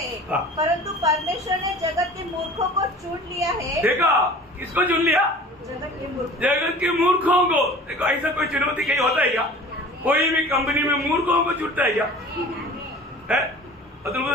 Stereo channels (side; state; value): both; normal; correlation 0.43